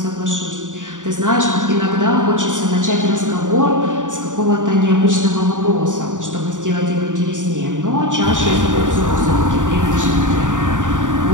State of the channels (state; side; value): late; left; 0.87 ms